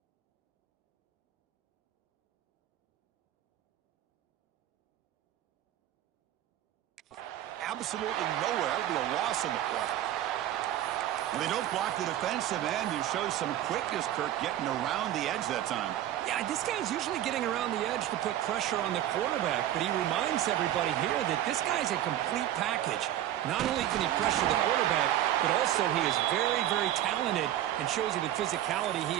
Absolutely nowhere. It'll be a loss on the play. When they don't block the defensive end, you show some quickness, Kirk, getting around the edge that time. Yeah, this guy's usually getting around the edge to put pressure on the quarterback, but he reminds everybody here that this guy's a complete package. Not only can he pressure the quarterback, but also he is very, very talented and shows you the physicality he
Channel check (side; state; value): left; quieter; 12.6 dB